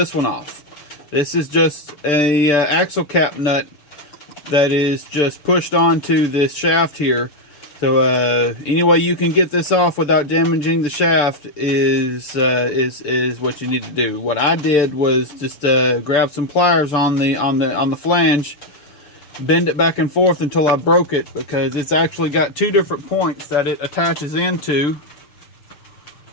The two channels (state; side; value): late; right; 6.8 ms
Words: one off. This is just a axle cap nut that is just pushed onto this shaft here. So any way you can get this off without damaging the shaft is what you need to do. What I did was just grab some pliers on the flange, bend it back and forth until I broke it, because it's actually got two different points that it attaches into. See